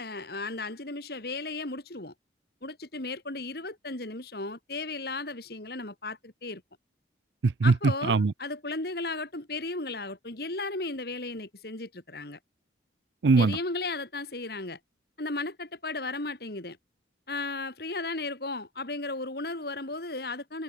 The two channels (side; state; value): both; normal; correlation 0.40